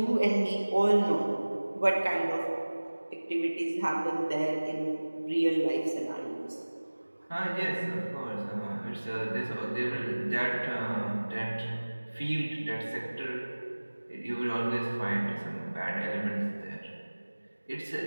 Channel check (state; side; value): inverted; both; correlation -1.00